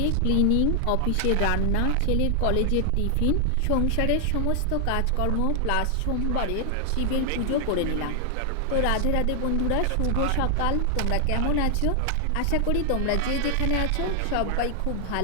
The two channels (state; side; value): different; both; correlation 0.00